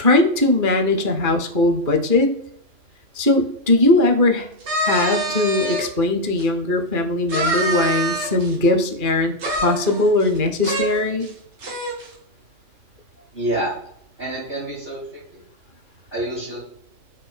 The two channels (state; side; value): late; left; 2.4 ms